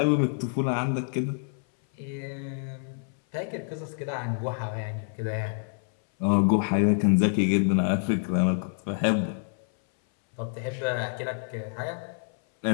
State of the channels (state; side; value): silent; right; 58 dB below the other